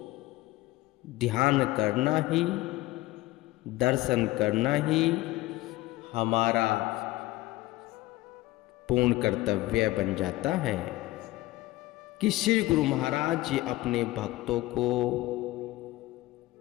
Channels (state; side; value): quieter; right; 18.4 dB